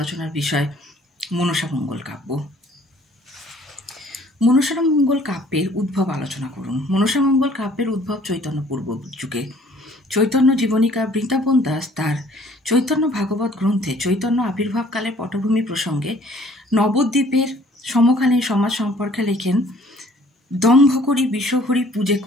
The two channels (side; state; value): both; normal; correlation 0.56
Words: বিষয় মনসা মঙ্গল কাব্য। মনসা মঙ্গল কাব্যের উদ্ভব আলোচনা করুন। মনসা মঙ্গল কাব্যের উদ্ভব চৈতন্য পূর্ব যুগে। চৈতন্য জীবনীকা বৃন্দাবন দাস তার চৈতন্য ভাগবত গ্রন্থে চৈতন্য আবির্ভাবকালের পটভূমি প্রসঙ্গে নবদ্বীপের সমকালীন সমাজ সম্পর্কে লেখেন, দম্ভ করি বিষহরি পূজে